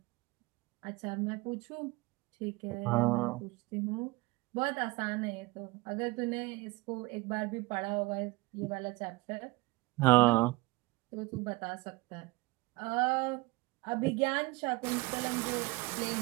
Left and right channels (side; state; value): left; quieter; 22.4 dB